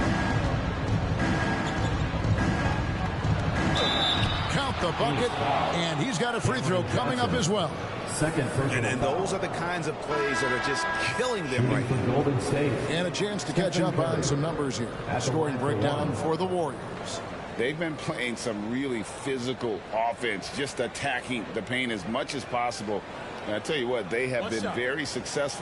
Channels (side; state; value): both; identical; correlation 1.00